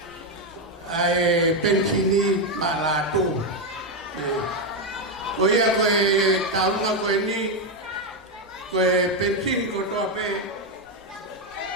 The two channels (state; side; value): normal; both; correlation 0.06